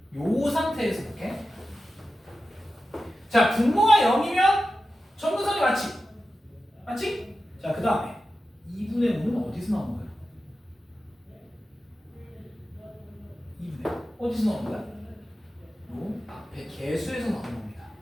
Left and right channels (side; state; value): both; normal; correlation 0.92